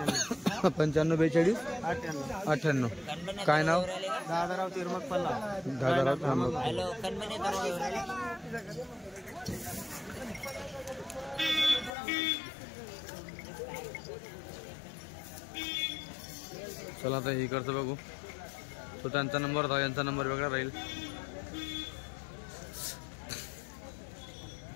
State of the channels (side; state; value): right; drops out; at 11.9 s